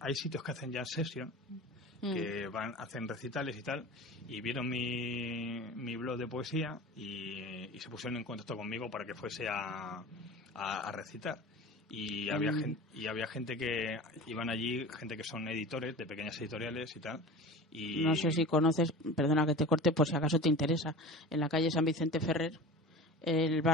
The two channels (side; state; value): both; normal; correlation 0.35